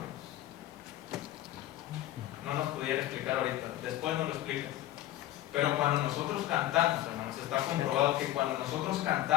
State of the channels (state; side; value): quieter; right; 14.4 dB